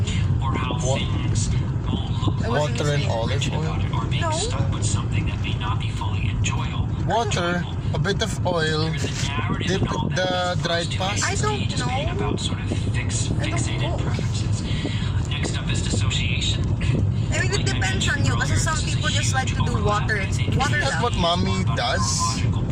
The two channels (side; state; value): both; identical; correlation 1.00